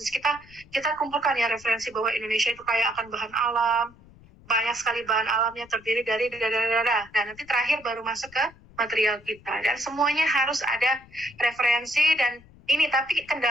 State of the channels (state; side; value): noise; left; rumble, 24 dB below the sound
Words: kita kumpulkan ya referensi bahwa Indonesia itu kaya akan bahan alam, banyak sekali bahan alamnya, terdiri dari Nah, nanti terakhir baru masuk ke material kita, dan semuanya harus ada referensi. Dan ini tapi